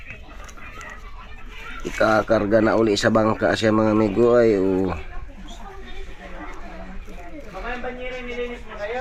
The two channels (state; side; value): identical; both; correlation 1.00